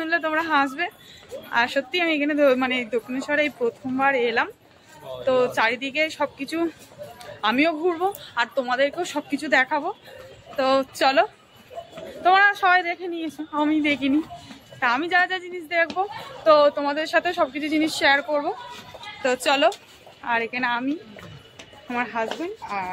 তোমরা হাসবে। আর সত্যি আমি এখানে মানে দক্ষিণেশ্বরে এই প্রথমবার এলাম। তো চারিদিকে সবকিছু আমিও ঘুরবো আর তোমাদেরকেও সবকিছু দেখাবো। তো চলো, তোমরা সবাই দেখে নিয়েছো, আমি দেখিনি। তা আমি যা যা জিনিস দেখবো তো তোমাদের সাথে সবকিছু জিনিস শেয়ার করব। তো চলো, আর এখানে আমি, আমার হাজবেন্ড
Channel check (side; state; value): both; identical; correlation 1.00